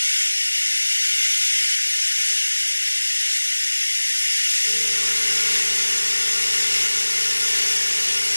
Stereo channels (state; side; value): inverted; both; correlation -1.00